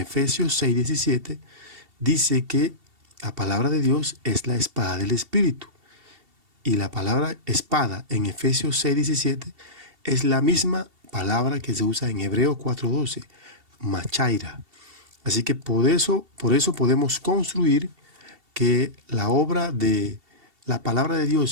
6:17 dice que la palabra de Dios es la espada del Espíritu. Y la palabra espada en Efesios 6:17 es la misma palabra que se usa en Hebreos 4:12, machaira. Así que por eso podemos construir que la obra de la palabra de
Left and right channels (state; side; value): late; left; 2.7 ms